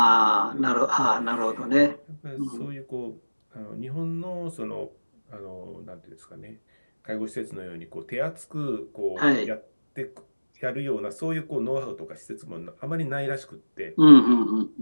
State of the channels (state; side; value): inverted; both; correlation -1.00